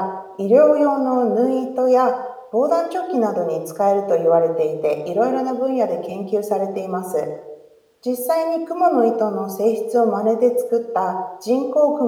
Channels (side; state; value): both; identical; correlation 1.00